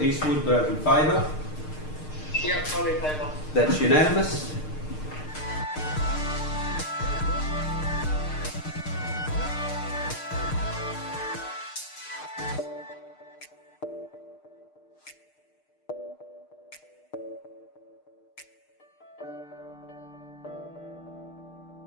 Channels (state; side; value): late; right; 6.5 ms